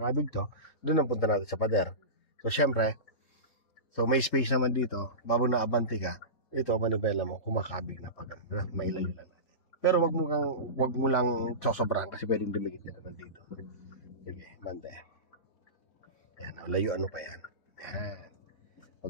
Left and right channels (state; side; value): late; right; 3.5 ms